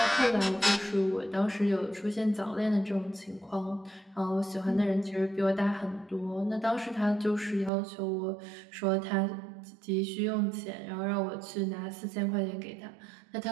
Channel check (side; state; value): left; drops out; at 7.7 s